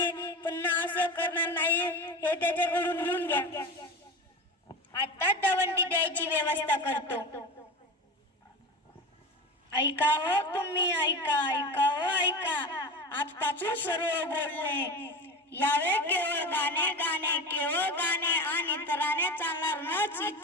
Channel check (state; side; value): normal; both; correlation 0.27